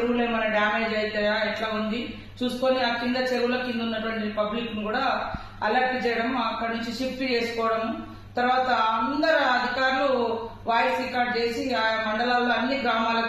ఏమైనా డ్యామేజ్ అవుతాయా, ఎట్లా ఉంది చూసుకొని ఆ కింద చెరువుల కింద ఉన్నటువంటి పబ్లిక్ ను కూడా అలర్ట్ చేయడం, అక్కడి నుంచి షిఫ్ట్ చేసుకోవడం. తర్వాత అందరు అధికారులు వాయిస్ రికార్డ్ చేసి ఆ మండలాల్లో అన్ని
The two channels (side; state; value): both; identical; correlation 1.00